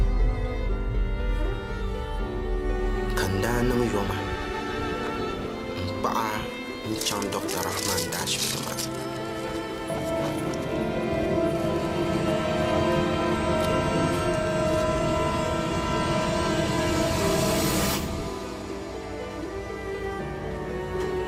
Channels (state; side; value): identical; both; correlation 1.00